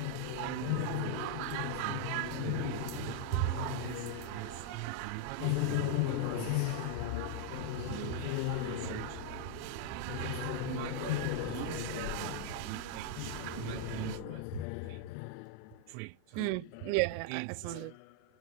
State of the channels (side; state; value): both; different; correlation 0.00